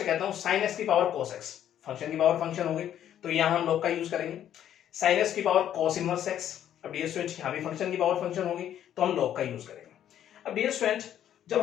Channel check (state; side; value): quieter; right; 10.6 dB